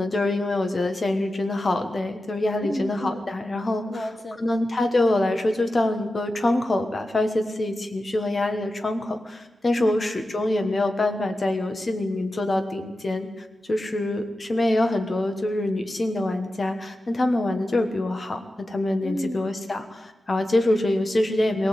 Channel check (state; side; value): normal; both; correlation 0.92